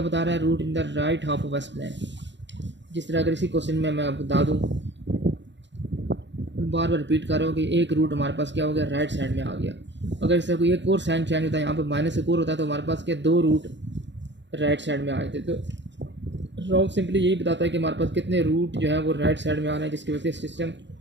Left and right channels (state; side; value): late; left; 0.52 ms